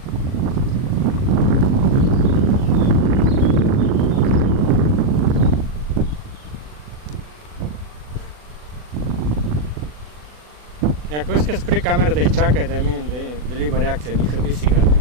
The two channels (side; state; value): left; late; 40 ms